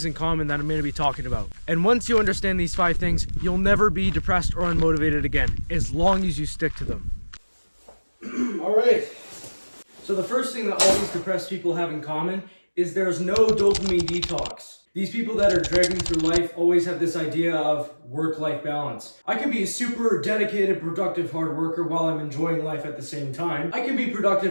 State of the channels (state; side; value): inverted; both; correlation -1.00